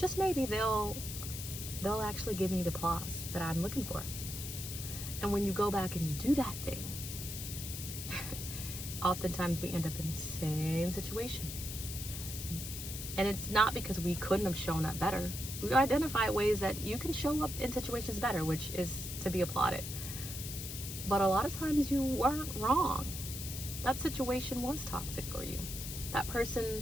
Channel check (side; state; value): left; noise; hiss, 7 dB below the sound